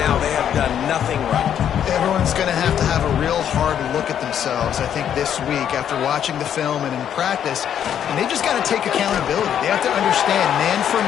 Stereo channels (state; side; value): quieter; right; 9.4 dB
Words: They have done nothing right. Everyone's going to have a real hard look at themselves, I think, this week after watching the film and in practice. And they just got to take accountability. They have to understand, man for